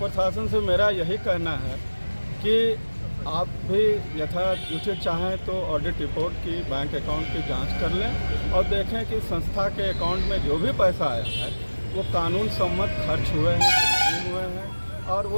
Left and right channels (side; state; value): both; inverted; correlation -1.00